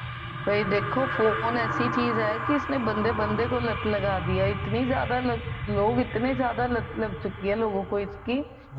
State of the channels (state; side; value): identical; both; correlation 1.00